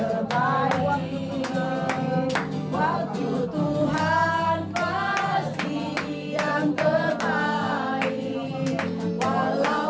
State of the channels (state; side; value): identical; both; correlation 1.00